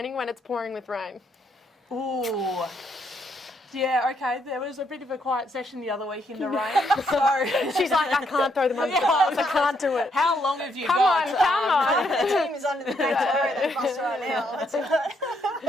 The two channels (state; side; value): normal; both; correlation 0.74